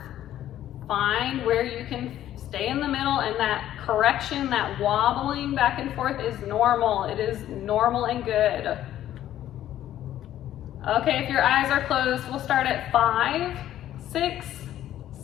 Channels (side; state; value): right; quieter; 12.3 dB